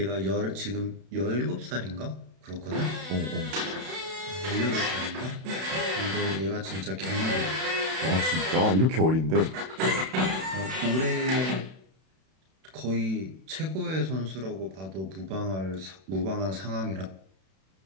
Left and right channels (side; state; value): left; late; 31 ms